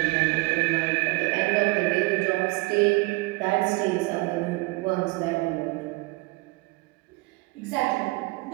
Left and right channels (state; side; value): quieter; left; 23.3 dB